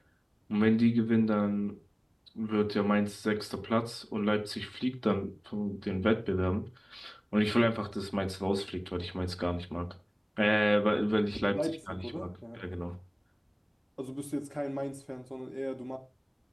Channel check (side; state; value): both; identical; correlation 1.00